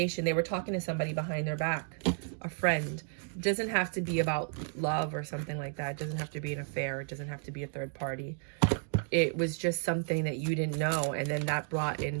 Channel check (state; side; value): silent; left; 56 dB below the other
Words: They were talking to somebody behind their back, a friend. It doesn't have to be about love or something like that. It doesn't have to be an affair. It doesn't have to be a third party. It was just something that you didn't know, and then that brought in